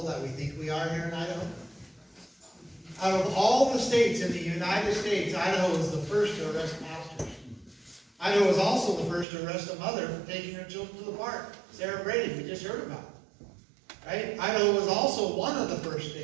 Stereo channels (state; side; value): drops out; left; at 9.2 s